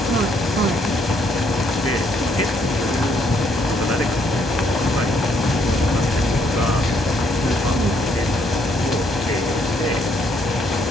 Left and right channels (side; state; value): both; normal; correlation 0.70